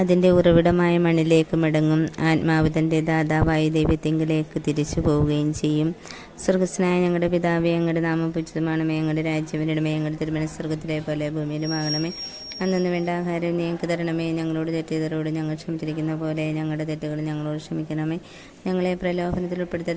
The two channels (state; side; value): identical; both; correlation 1.00